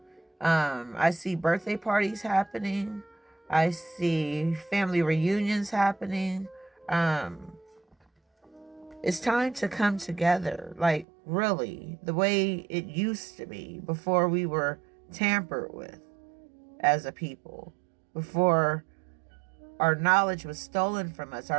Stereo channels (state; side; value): drops out; left; at 11.1 s